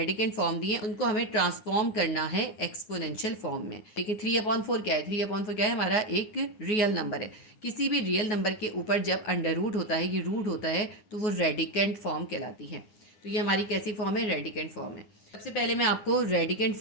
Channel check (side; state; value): right; late; 9.4 ms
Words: फॉर्म दिए, उनको हमें ट्रांसफॉर्म करना है एक्सपोनेंशियल फॉर्म में। देखिए 3/4 क्या है, 3/4 क्या है, हमारा एक रियल नंबर है। किसी भी रियल नंबर के ऊपर जब अंडर रूट होता है, ये रूट होता है, तो वो रेडिकेंट फॉर्म कहलाती है। तो ये हमारी कैसी फॉर्म है, रेडिकेंट फॉर्म है। सबसे पहले मैं आपको रेडिकेंट